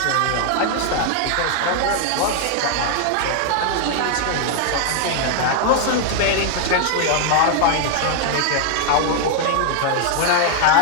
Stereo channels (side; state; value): both; different; correlation 0.00